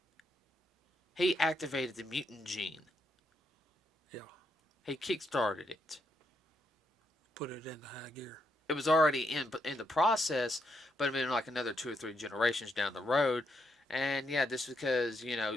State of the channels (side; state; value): both; normal; correlation 0.78